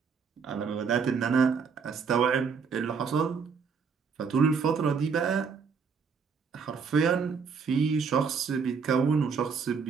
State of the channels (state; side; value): quieter; left; 5.8 dB